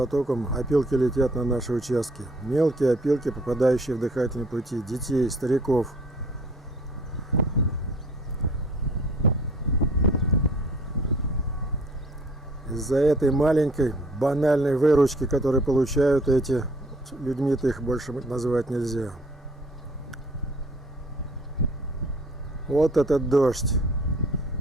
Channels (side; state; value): both; normal; correlation 0.56